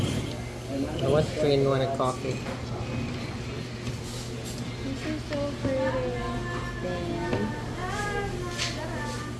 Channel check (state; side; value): identical; both; correlation 1.00